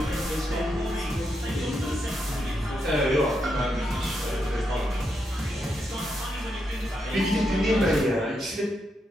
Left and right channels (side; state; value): both; normal; correlation 0.82